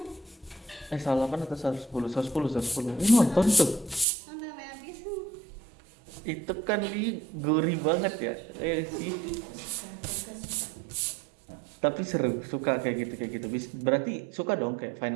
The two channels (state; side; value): drops out; left; at 4.0 s